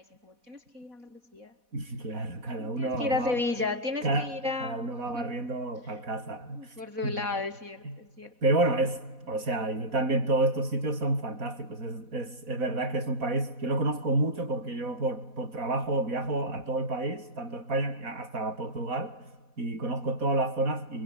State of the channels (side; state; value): left; late; 4.1 ms